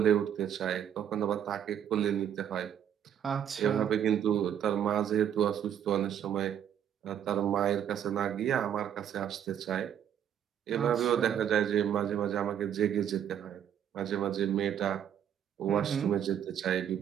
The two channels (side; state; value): left; quieter; 9.5 dB